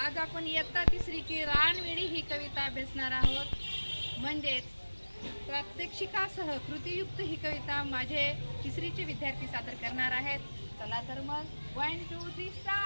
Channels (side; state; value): both; inverted; correlation -1.00